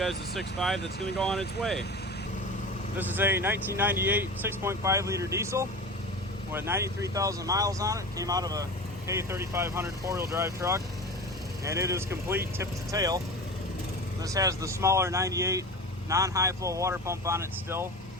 the 6.5 that's going to go on its way. This is a 1998 6.5 liter diesel with 93,000 miles on it. Came out of a K3500 four-wheel drive truck, and it is complete tip to tail. This has the smaller 98 non-high flow water pump on it still.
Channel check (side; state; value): both; normal; correlation 0.31